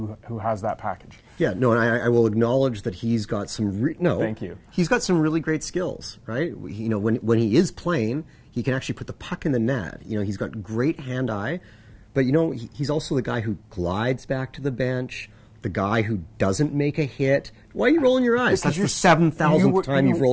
has that package. Yeah, no, and I will acknowledge that he's got some Thank you. He's got some really great skills, right? You know, when he is playing, he can actually put the puck in the net. You know, he's got great hand-eye, but you know, he's also the guy who glides back to the bench, the guy who doesn't make a hit. Why are you rolling your eyes? That's the 7,000th time you've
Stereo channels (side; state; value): both; identical; correlation 1.00